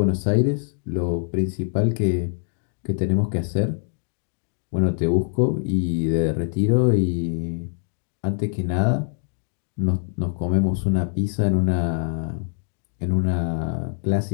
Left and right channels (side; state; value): right; silent; digital silence